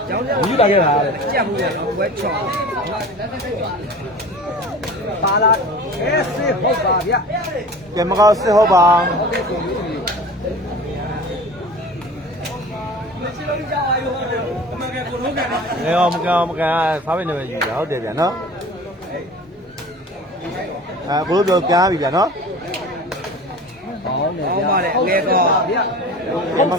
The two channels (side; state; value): both; normal; correlation 0.39